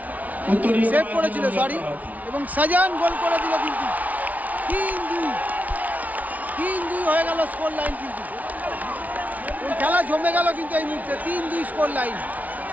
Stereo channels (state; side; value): late; left; 0.073 ms